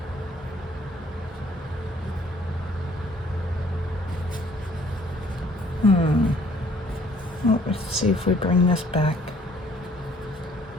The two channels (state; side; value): normal; both; correlation 0.60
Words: See if we bring this back.